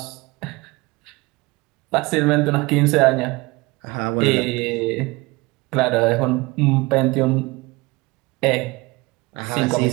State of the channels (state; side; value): quieter; left; 23.5 dB